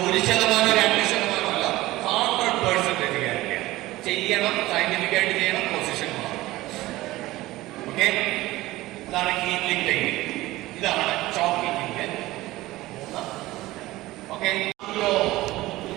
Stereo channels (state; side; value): quieter; left; 17.9 dB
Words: 1%, 2% അല്ല, 100% ഗ്യാരണ്ടിയാണ്. ചെയ്യണം, സയന്റിഫിക് ആയിട്ട് ചെയ്യണം, പൊസിഷൻ മാറും. ഓക്കെ, ഇതാണ് ഹീലിംഗ് ടെക്നിക്. ഇതാണ് ചോക്കിങ്ങിന്റെ 3. ഓക്കെ,